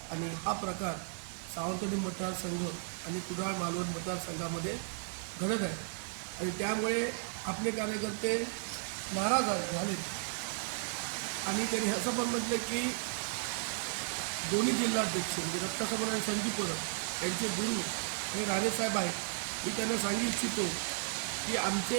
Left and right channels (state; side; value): silent; left; 55 dB below the other